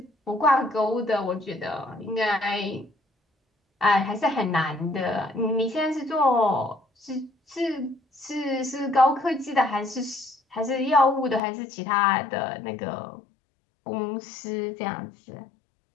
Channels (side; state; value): right; drops out; at 11.4 s